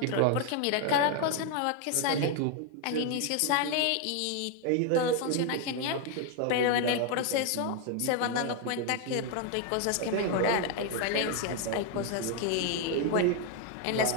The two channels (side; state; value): both; different; correlation 0.01